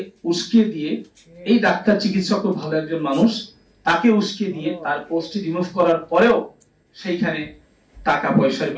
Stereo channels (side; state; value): both; identical; correlation 1.00